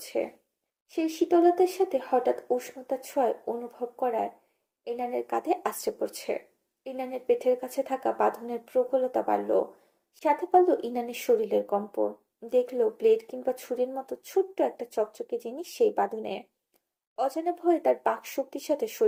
সেই শীতলতার সাথে হঠাৎ উষ্ণতার ছোঁয়ায় অনুভব করায় ইনানের কাঁধে আছড়ে পড়ছে। ইনানের পেটের কাছে থাকা বাঁধনের প্রবলতা বাড়ল। সাথে পারল ইনানের শরীরের কম্প। দেখলো ব্লেড কিংবা ছুরির মতো ছোট্ট একটা চকচকে জিনিস সেই বাঁধনে। অজানা ভয়ে তার বাক শক্তির সাথে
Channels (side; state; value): both; identical; correlation 1.00